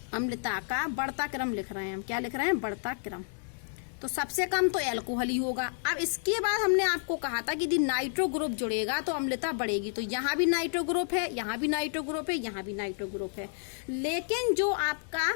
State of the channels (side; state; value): right; silent; 57 dB below the other